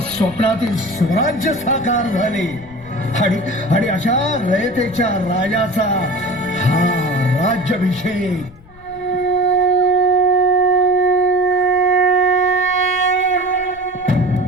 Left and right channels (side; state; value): left; noise; rumble, 23 dB below the sound